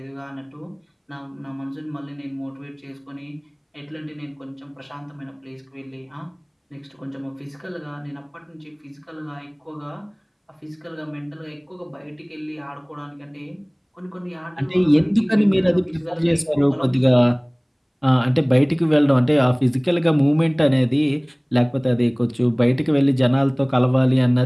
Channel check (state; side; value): identical; both; correlation 1.00